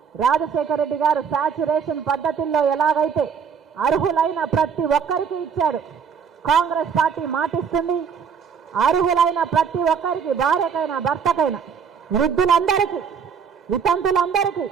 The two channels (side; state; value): left; quieter; 6.8 dB